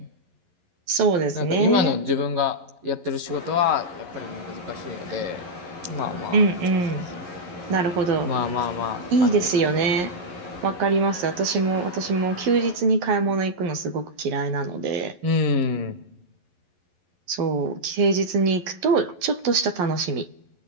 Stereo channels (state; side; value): late; left; 11 ms